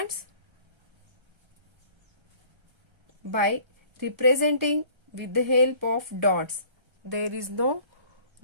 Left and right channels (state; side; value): late; left; 1.3 ms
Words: by representing with the help of dots, there is no